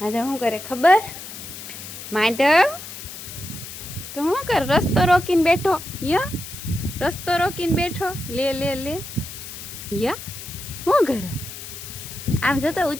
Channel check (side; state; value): left; noise; hiss, 11 dB below the sound